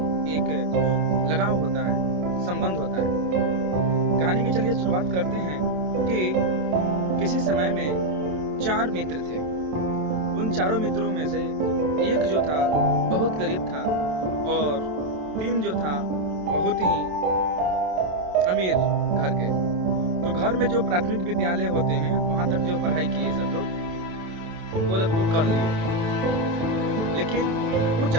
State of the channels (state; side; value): late; left; 27 ms